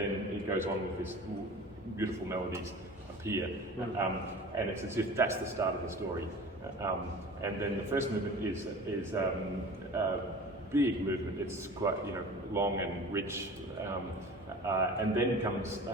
it goes on with this beautiful melodies appear. And it's as if that's the start of the story. And then the first movement is a big movement. It's quite long and rich, and then comes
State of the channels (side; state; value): both; normal; correlation 0.39